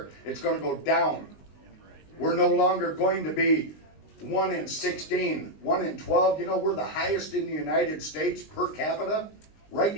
It's gonna go down. We're no longer going to be 1 in 16, 1 in 12. You know, we're the highest in the United States per capita, right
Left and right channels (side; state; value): right; late; 19 ms